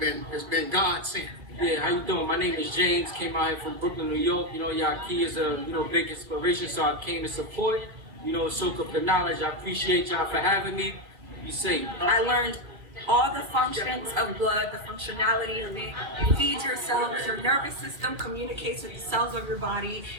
been God sent. Yeah, how you doing? My name is James. Came out here from Brooklyn, New York. You know, Yahki is a big inspiration, so I came to support. You know, soak up the knowledge. I appreciate y'all for having me. Be safe. I learned all the functions of blood, the functionality of it. It feeds your cells, your nervous system communicates with the cells of your body,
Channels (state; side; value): late; left; 2.4 ms